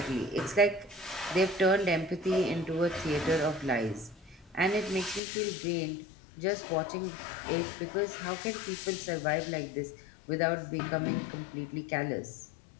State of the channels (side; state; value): right; drops out; at 5.2 s